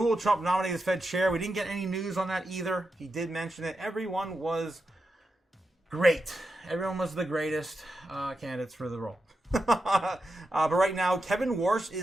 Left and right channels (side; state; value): both; normal; correlation 0.88